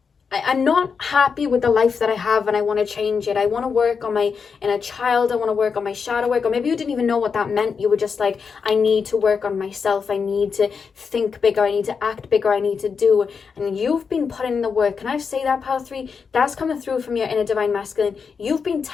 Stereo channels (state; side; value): quieter; right; 5.8 dB